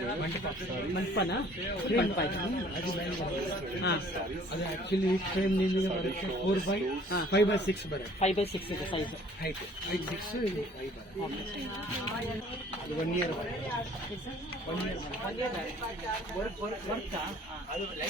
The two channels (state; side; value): normal; both; correlation 0.55